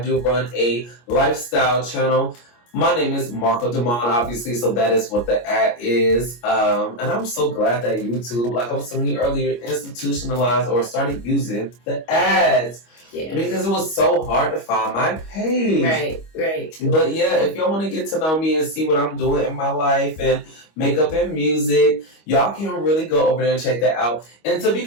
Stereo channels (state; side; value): late; right; 25 ms